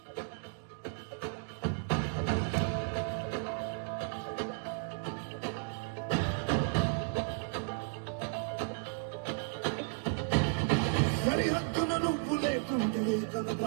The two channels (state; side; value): silent; left; 55 dB below the other